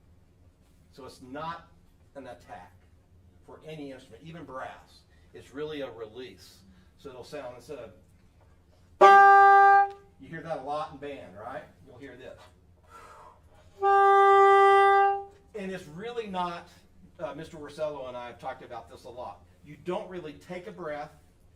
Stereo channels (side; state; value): both; identical; correlation 1.00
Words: So it's not an attack for any instrument, even brass. It's really a release. So it'll sound, instead of, you hear that a lot in band, right? You'll hear this. And it's really not, Mr. Worosello and I have talked about this a lot. You don't really take a breath